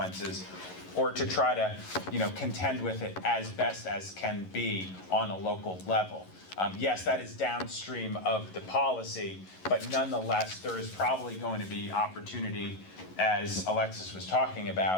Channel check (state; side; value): late; right; 11 ms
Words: or to try to, contend with it as best as can be on a local level. Yes, that is downstream of the policy, but nonetheless, there is probably going to be opportunity, as Alexis was talking